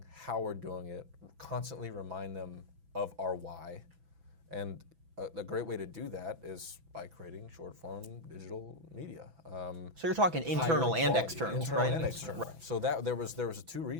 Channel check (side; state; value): left; late; 6.0 ms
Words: how we're doing it, constantly remind them of our why. And a great way to do that is by creating short-form digital media. So you're talking internal and external, right? Internal and external. Right. So there was two